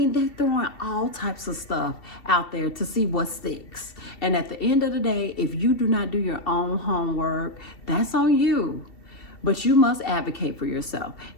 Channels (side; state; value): right; late; 2.7 ms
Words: they're throwing all types of stuff out there to see what sticks. And at the end of the day, if you do not do your own homework, that's on you. But you must advocate for yourself.